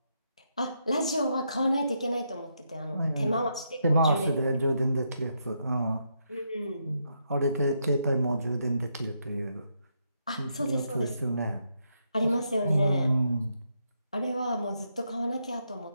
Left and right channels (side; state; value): both; inverted; correlation -0.79